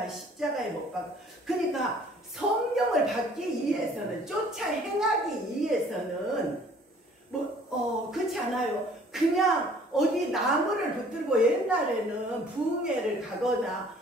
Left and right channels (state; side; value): normal; both; correlation 0.55